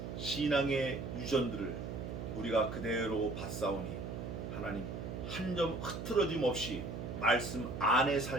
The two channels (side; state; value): right; noise; hum, 6 dB below the sound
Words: 신앙의 유전들을 우리가 그대로 받사오니 하나님 한 점 흐트러짐 없이 말씀 안에